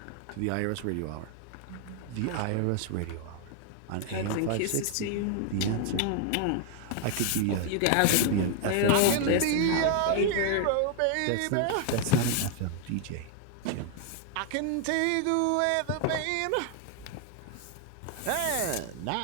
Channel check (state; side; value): different; both; correlation 0.00